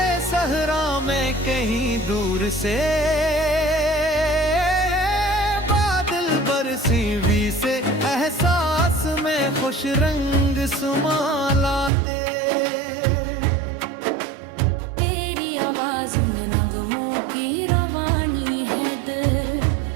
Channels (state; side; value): drops out; left; at 11.9 s